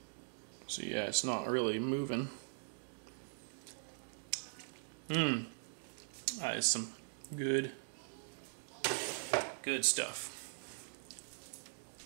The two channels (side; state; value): left; silent; digital silence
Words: So yeah, it's not really moving. That is some good stuff.